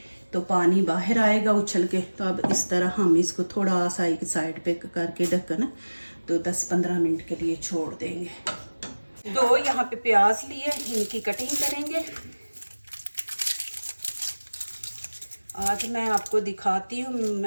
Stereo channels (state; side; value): inverted; both; correlation -1.00